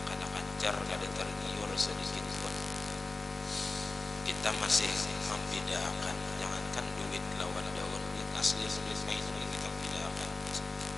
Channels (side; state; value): right; quieter; 3.5 dB